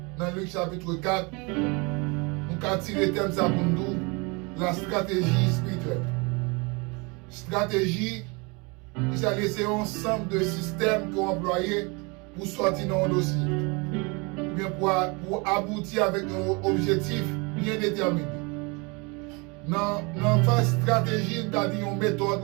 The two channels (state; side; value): quieter; left; 29.3 dB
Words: dans Luc chapitre 4, nous avons tiré le thème ça pour nous, la stratégie spirituelle. Stratégie, qui a laissé un ensemble de systèmes qu'on employé pour sortir dans un dossier. Bien pour aboutir avec un objectif bien déterminé. Dans la phase stratégie, nous avons dit une méthode